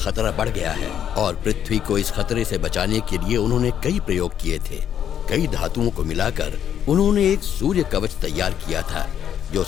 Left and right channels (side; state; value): right; quieter; 9.5 dB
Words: बढ़ गया है। और पृथ्वी को इस खतरे से बचाने के लिए उन्होंने कई प्रयोग किए थे। कई धातुओं को मिलाकर उन्होंने एक सूर्य कवच तैयार किया था, जो